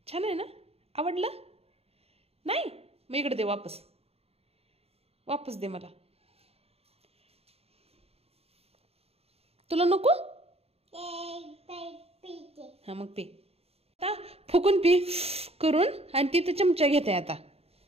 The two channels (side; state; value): left; late; 0.29 ms